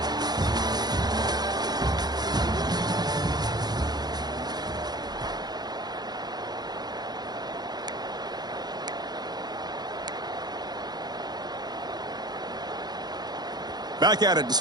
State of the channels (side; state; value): left; late; 0.20 ms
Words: Back at it to